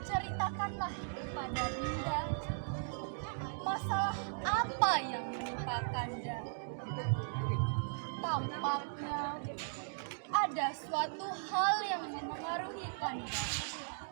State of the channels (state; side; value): silent; left; digital silence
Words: Ceritakanlah kepada Dinda, masalah apa yang menimpa Kanda? Tampaknya ada suatu hal yang memengaruhi Kanda.